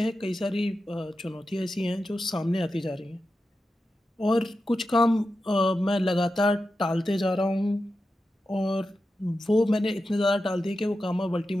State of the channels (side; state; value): both; normal; correlation 0.91